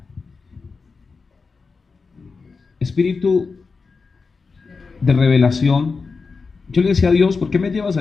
Espíritu de revelación. Yo le decía a Dios, ¿por qué me llevas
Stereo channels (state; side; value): quieter; right; 4.6 dB